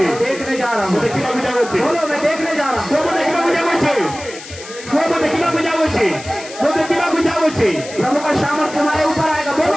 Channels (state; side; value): noise; left; hiss, 15 dB below the sound